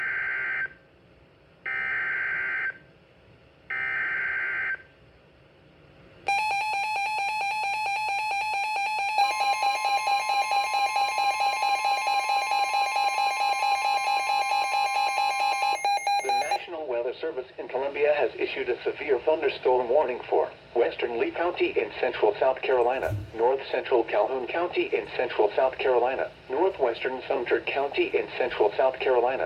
Weather Service in Columbia has issued a severe thunderstorm warning for western Lee County in central South Carolina, north central Calhoun County in central South Carolina, northwestern Sumter County in central South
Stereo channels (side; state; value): both; identical; correlation 1.00